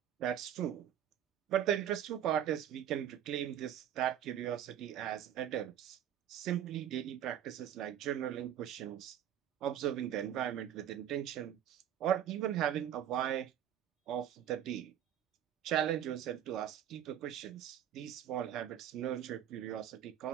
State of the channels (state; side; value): quieter; left; 10.4 dB